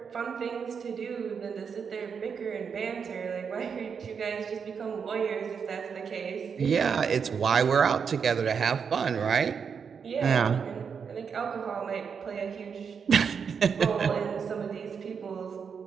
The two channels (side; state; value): left; quieter; 6.4 dB